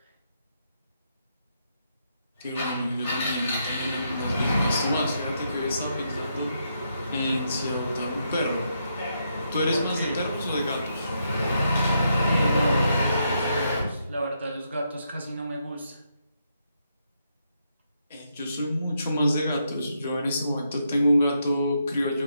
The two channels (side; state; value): both; inverted; correlation -0.79